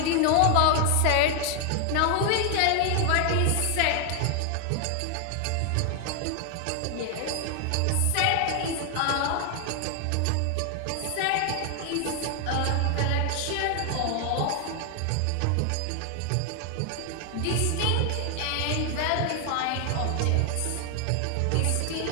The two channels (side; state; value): both; different; correlation 0.00